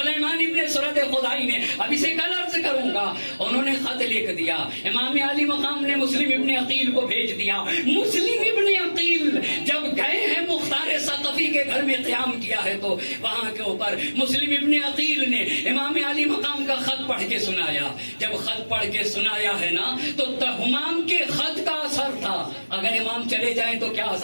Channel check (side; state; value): both; inverted; correlation -1.00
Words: ابن سرد خزائی نے، اب اسے کل عرض کروں گا، انہوں نے خط لکھ دیا. امام علی مقام نے مسلم ابن عقیل کو بھیج دیا. مسلم ابن عقیل جب گئے ہیں مختار ثقفی علی کے گھر میں قیام کیا ہے تو وہاں کے اوپر مسلم ابن عقیل نے امام علی مقام کا خط پڑھ کے سنایا. جب خط پڑھ کے سنایا ہے نا تو امام کے خط کا اثر تھا. اگر امام چلے جائیں تو کیا